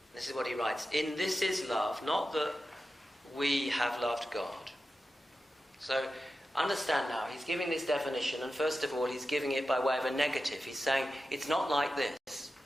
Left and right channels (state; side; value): normal; both; correlation 0.92